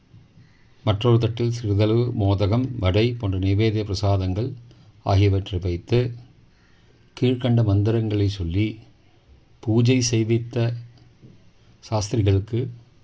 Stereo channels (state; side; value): identical; both; correlation 1.00